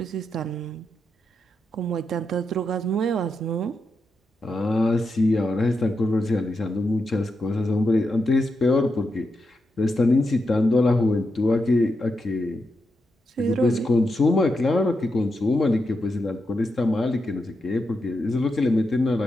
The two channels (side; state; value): both; normal; correlation 0.85